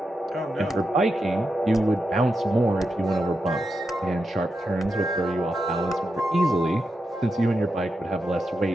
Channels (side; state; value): both; normal; correlation 0.87